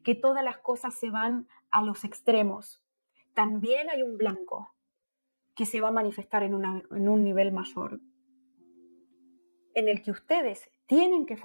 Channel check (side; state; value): both; inverted; correlation -1.00